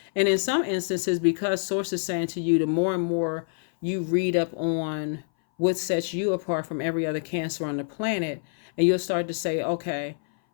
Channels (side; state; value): right; silent; 59 dB below the other